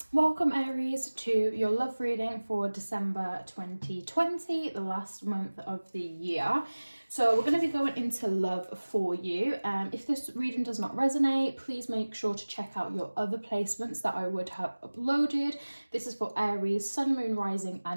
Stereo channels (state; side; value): inverted; both; correlation -1.00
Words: Welcome Aries to your love reading for December 2020, the last month of the year. So we're going to be going into love for you. If this reading does not resonate, please make sure to check out your other placements that I would have uploaded. This is for Aries, Sun, Moon, Rising